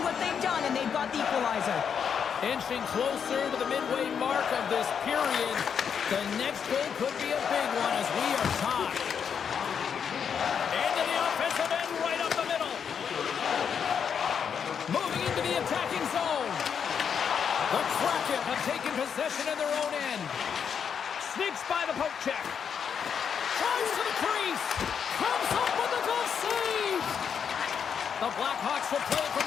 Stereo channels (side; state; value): right; quieter; 7.3 dB